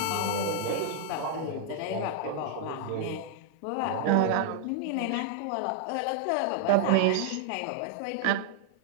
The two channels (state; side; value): different; both; correlation 0.00